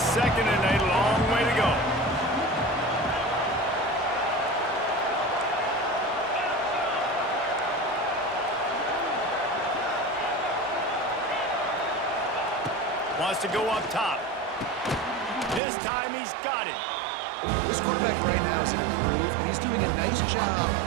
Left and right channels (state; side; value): drops out; left; at 15.6 s